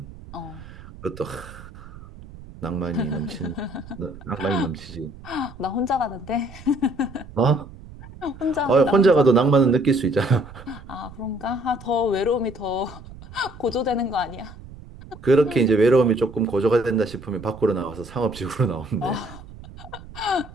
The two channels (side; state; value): right; noise; rumble, 17 dB below the sound